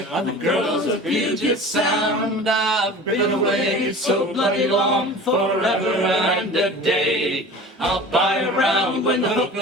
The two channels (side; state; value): both; normal; correlation 0.39